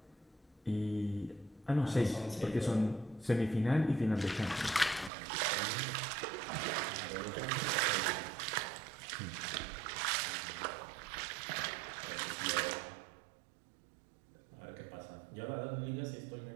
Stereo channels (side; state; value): left; drops out; at 5.1 s